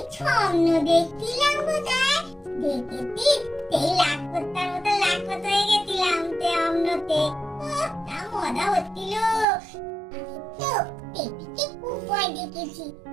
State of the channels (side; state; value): left; drops out; at 9.5 s